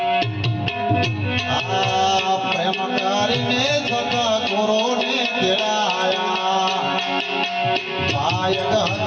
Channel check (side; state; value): both; identical; correlation 1.00